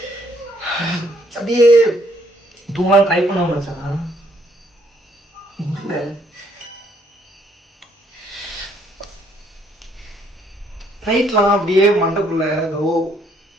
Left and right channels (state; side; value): normal; both; correlation 0.67